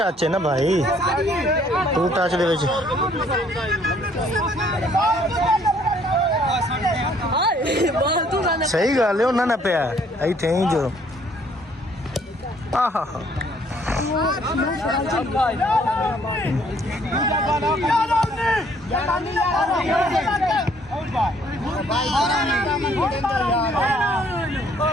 है ना भाई टू टच दे विच सही गल है उन्होंने ना पिया इत्थे ही जो आहा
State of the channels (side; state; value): both; normal; correlation 0.63